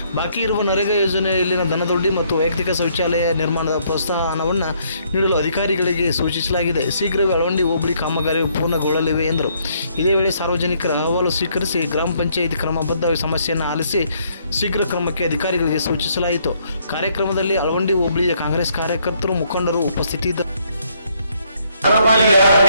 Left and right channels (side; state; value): both; inverted; correlation -0.69